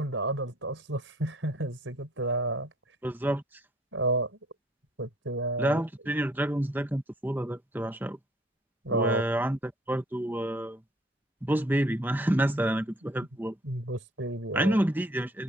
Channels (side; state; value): both; normal; correlation 0.58